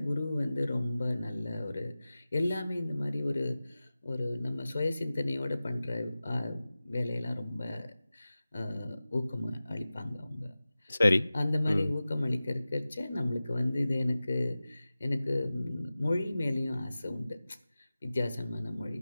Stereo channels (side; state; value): both; inverted; correlation -0.96